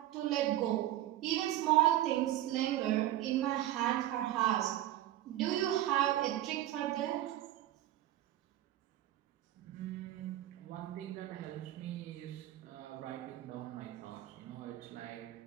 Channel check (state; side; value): quieter; left; 13.6 dB